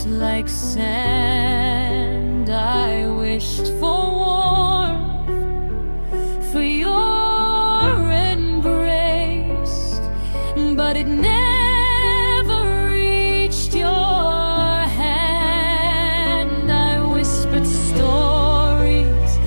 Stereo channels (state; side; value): inverted; both; correlation -1.00